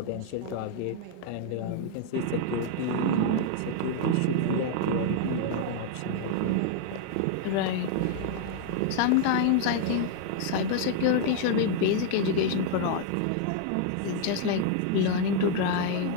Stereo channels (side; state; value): both; different; correlation 0.00